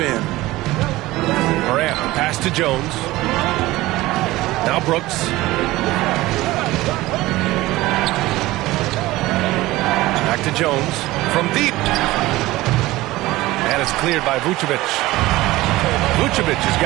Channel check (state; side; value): quieter; left; 18.3 dB